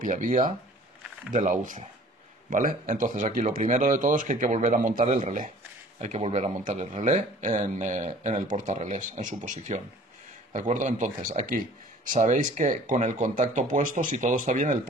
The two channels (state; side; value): normal; both; correlation 0.50